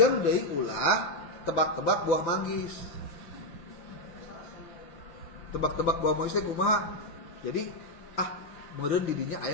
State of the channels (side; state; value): right; late; 5.9 ms